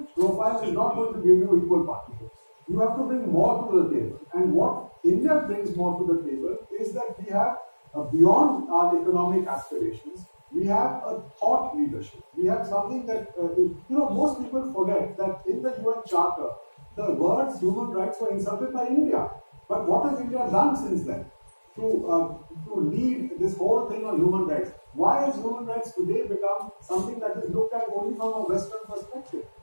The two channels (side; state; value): both; inverted; correlation -1.00